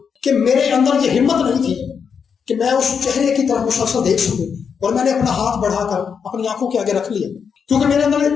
کہ میرے اندر یہ ہمت نہیں تھی کہ میں اس چہرے کی طرف مسلسل دیکھ سکوں، اور میں نے اپنا ہاتھ بڑھا کر اپنی آنکھوں کے آگے رکھ لیا، کیونکہ میرے اندر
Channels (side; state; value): right; quieter; 6.6 dB